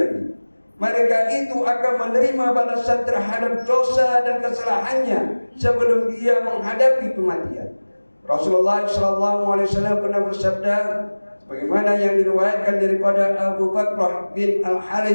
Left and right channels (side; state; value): both; inverted; correlation -1.00